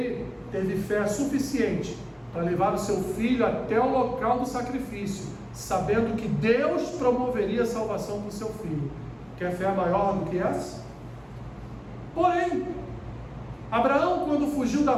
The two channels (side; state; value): both; identical; correlation 1.00